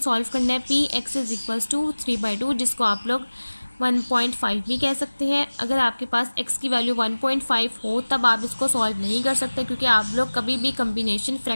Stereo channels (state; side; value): inverted; both; correlation -1.00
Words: करना है P x is equals to 3/2 जिसको आप लोग 1.5 भी कह सकते हैं। अगर आपके पास x की वैल्यू 1.5 हो तब आप इसको सॉल्व नहीं कर सकते क्योंकि आप लोग कभी भी कम्बिनेशन